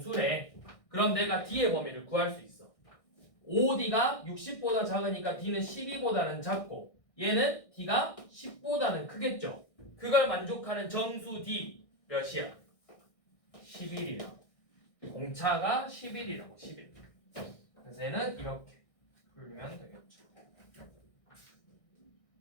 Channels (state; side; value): late; right; 1.6 ms